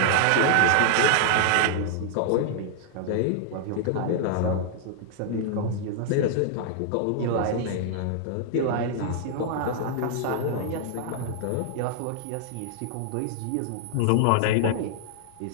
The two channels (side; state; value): both; different; correlation -0.01